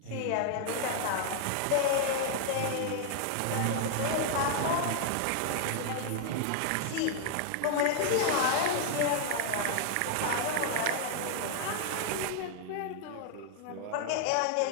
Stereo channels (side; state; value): both; different; correlation 0.00